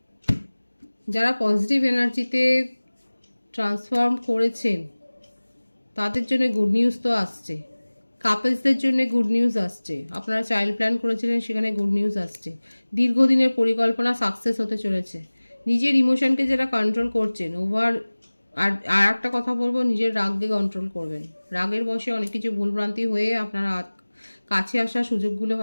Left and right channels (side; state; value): both; inverted; correlation -1.00